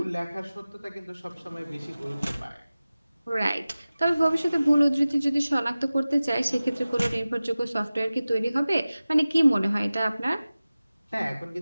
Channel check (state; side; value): inverted; both; correlation -0.97